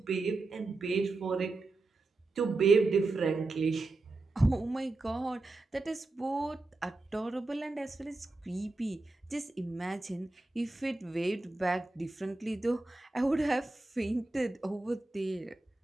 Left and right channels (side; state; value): left; quieter; 3.1 dB